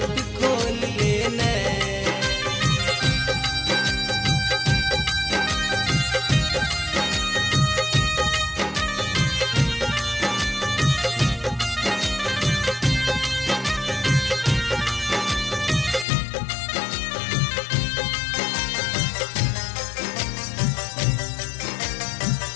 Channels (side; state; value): right; drops out; at 16.1 s